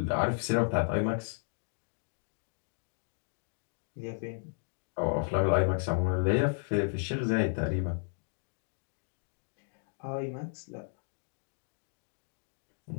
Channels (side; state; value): right; silent; digital silence